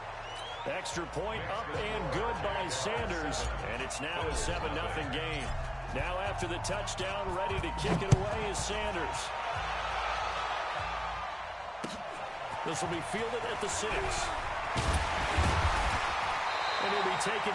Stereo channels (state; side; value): identical; both; correlation 1.00